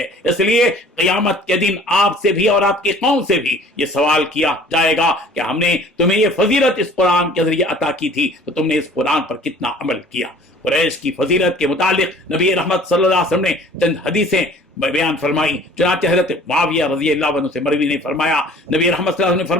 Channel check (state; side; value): normal; both; correlation 0.50